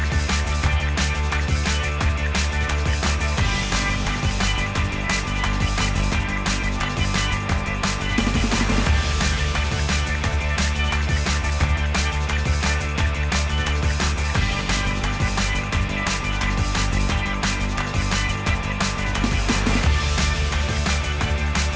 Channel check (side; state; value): both; identical; correlation 1.00